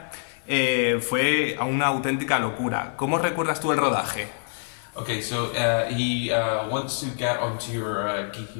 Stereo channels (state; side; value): silent; right; 61 dB below the other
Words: fue una auténtica locura. ¿Cómo recuerdas tú el rodaje? Okay, so he wants to get onto your